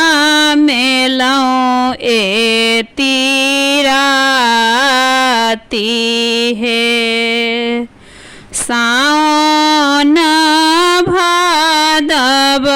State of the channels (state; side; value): identical; both; correlation 1.00